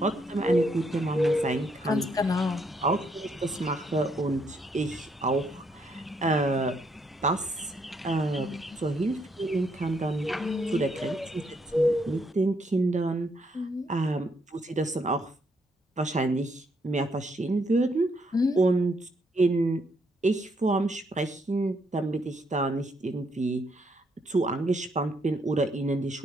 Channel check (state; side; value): normal; both; correlation 0.73